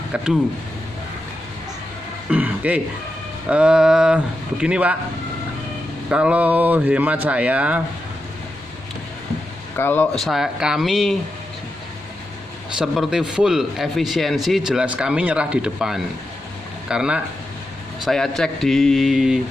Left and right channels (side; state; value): both; normal; correlation 0.88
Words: Kedu. Oke. Begini Pak, kalau hemat saya, kami seperti full efisiensi, jelas kami nyerah di depan. Karena saya cek di